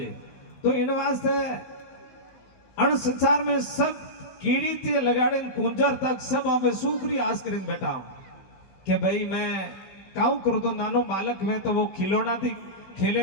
तो इन वास्ते अण संसार में सब कीड़ी ते लगाड़े कुंजर तक सब हमें सुखरी आस कर बैठा हूं कि भाई मैं काऊ करूं तो नानो बालक में तो वो खिलौना थी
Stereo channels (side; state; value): right; late; 16 ms